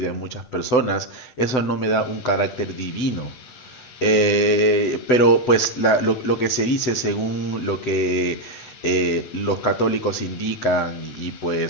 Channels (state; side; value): late; right; 8.0 ms